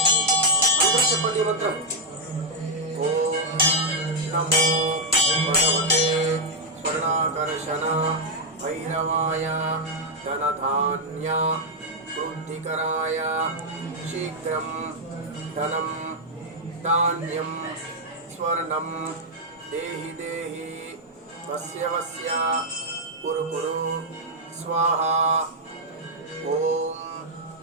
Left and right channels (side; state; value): both; normal; correlation -0.03